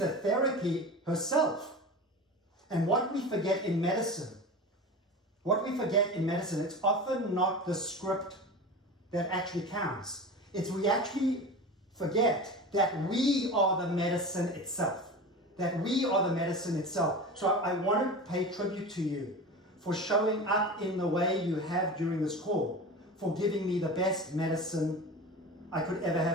therapy herself." And what we forget in medicine, it's often not the script that actually counts. It's we actually forget that we are the medicine itself. So I want to pay tribute to you for showing up in the way you have during this call, for giving me the best medicine I could ever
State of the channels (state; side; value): normal; both; correlation 0.31